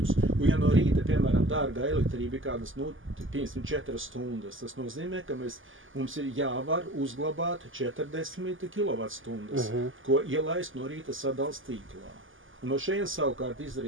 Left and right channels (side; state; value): left; late; 0.58 ms